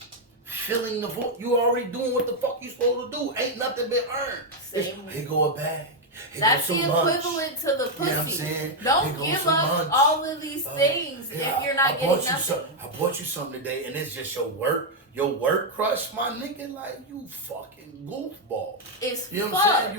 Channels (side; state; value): both; normal; correlation 0.01